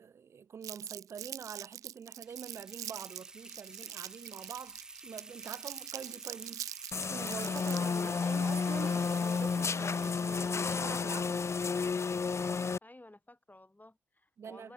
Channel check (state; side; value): quieter; right; 3.1 dB